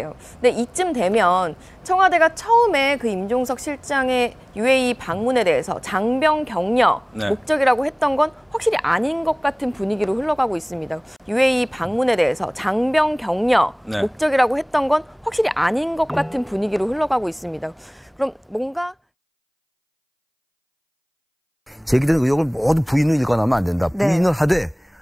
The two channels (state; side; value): identical; both; correlation 1.00